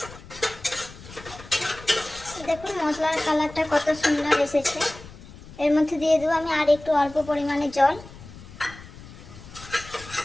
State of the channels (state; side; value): noise; left; rumble, 17 dB below the sound